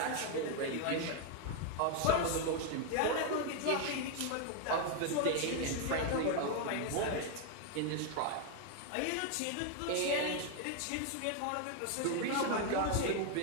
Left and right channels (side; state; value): both; different; correlation 0.01